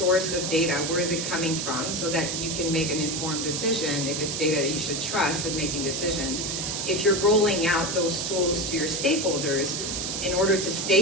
of data. Where is it coming from, so that you can make an informed decision if it's data that you should trust in making decisions. If you're rolling out those tools to your stakeholders, in order to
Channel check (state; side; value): noise; right; hiss, 2 dB below the sound